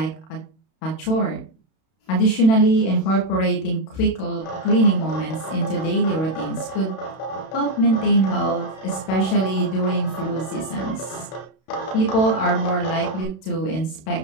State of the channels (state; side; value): late; right; 32 ms